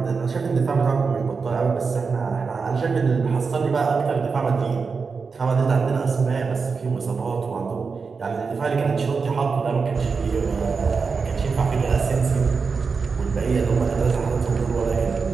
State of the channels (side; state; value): left; quieter; 5.0 dB